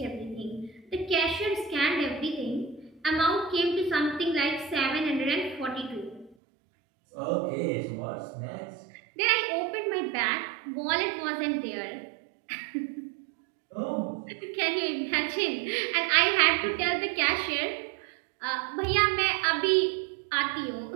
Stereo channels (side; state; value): left; drops out; at 6.4 s